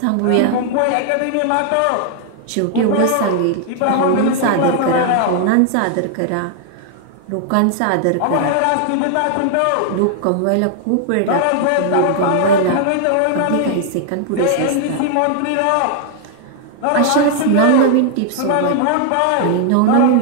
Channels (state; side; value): different; both; correlation 0.00